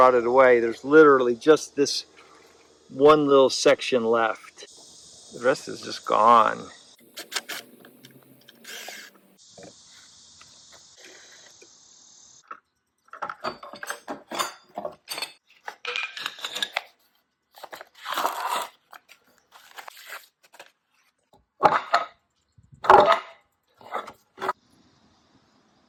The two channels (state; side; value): identical; both; correlation 1.00